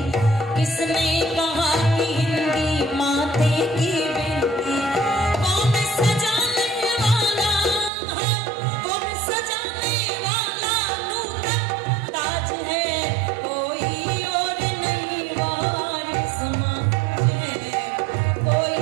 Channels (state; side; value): drops out; left; at 7.9 s